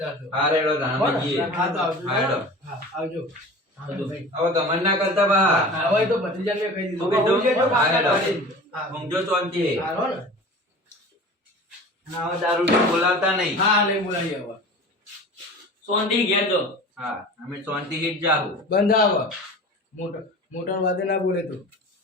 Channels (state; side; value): normal; both; correlation 0.38